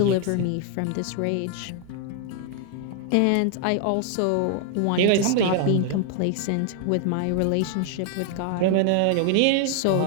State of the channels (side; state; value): both; different; correlation 0.00